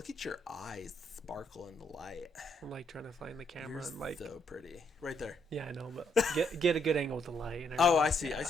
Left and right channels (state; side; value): normal; both; correlation 0.73